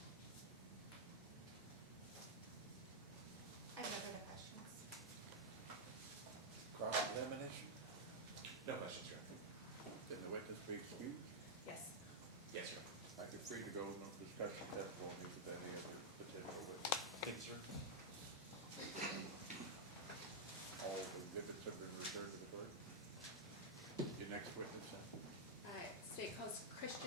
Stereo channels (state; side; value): normal; both; correlation -0.04